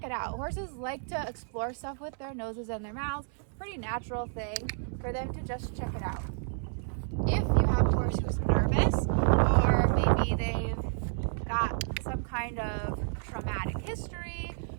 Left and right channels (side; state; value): left; silent; 57 dB below the other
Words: it out. Horses like to explore stuff with their noses and their mouths. Pretty natural thing for them to just check it out. If you have a horse who's nervous, or maybe they've got some kind of traumatic history,